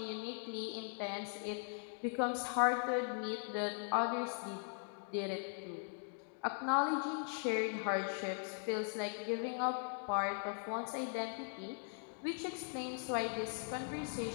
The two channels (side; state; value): right; silent; 51 dB below the other